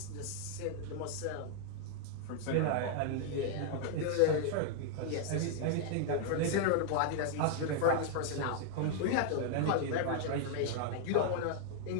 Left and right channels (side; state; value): both; different; correlation -0.01